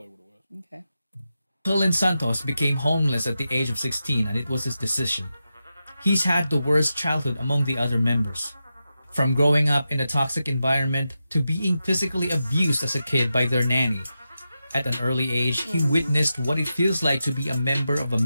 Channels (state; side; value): inverted; both; correlation -0.90